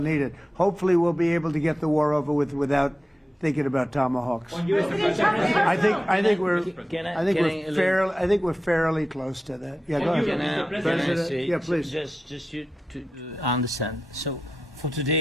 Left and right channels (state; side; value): normal; both; correlation 0.91